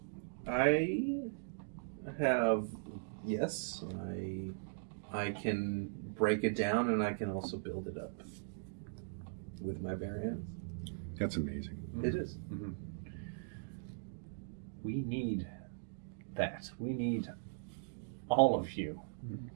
I have, yes, I can break it down and I can also build it up with my bare hands. That's amazing. It is. Mm-hmm. We need that. We need all of you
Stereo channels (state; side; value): silent; left; digital silence